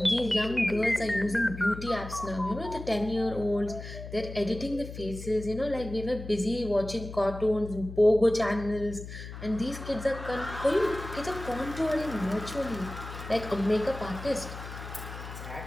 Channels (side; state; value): left; noise; hum, 11 dB below the sound